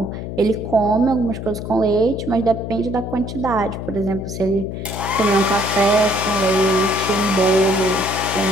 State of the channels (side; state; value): left; noise; hum, 7 dB below the sound